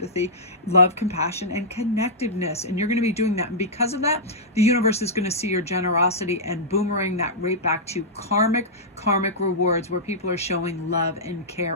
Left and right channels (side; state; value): both; normal; correlation -0.11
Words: love, compassion, and connectiveness. And you're going to be doing that. And because of that, the universe is going to see your generosity and boomerang that right back to karmic rewards, where people are showing love and care